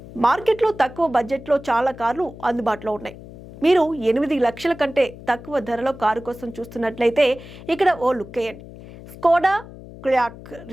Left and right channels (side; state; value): left; noise; hum, 16 dB below the sound